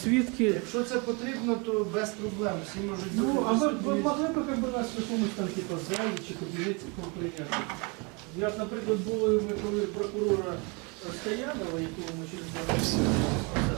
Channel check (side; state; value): left; quieter; 30.9 dB